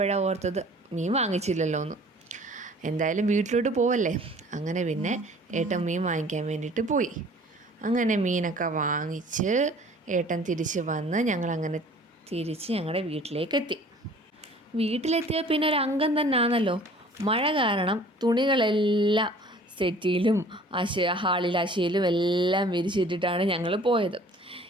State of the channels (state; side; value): normal; both; correlation 0.50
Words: ഓർത്തത് മീൻ വാങ്ങിച്ചില്ലല്ലോ എന്ന്. എന്തായാലും വീട്ടിലോട്ട് പോവല്ലേ. അങ്ങനെ പിന്നെ ഏട്ടൻ മീൻ വാങ്ങിക്കാൻ വേണ്ടിയിട്ട് പോയി. അങ്ങനെ മീനൊക്കെ വാങ്ങിച്ച് ഏട്ടൻ തിരിച്ച് വന്ന് ഞങ്ങളങ്ങനെ തിരിച്ച് ഞങ്ങളുടെ വീട്ടിലേക്കെത്തി. വീട്ടിലെത്തിയ പിന്നെ ഒരു അംഗം തന്നെ ആണല്ലോ. മഴ കാരണം തുണികളെല്ലാം സെറ്റിയിലും ഹാളിൽ അശയിലും എല്ലാം വിരിച്ചിട്ടിട്ടാണ് ഞങ്ങൾ പോയത്.